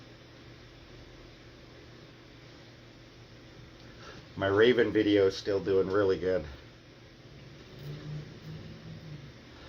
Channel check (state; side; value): identical; both; correlation 1.00